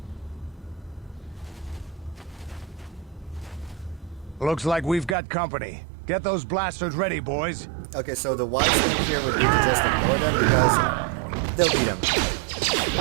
Looks like we've got company. Get those blasters ready, boys. Okay, so the wise thing here would be to just ignore them because they'll beat them.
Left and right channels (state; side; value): drops out; left; at 5.2 s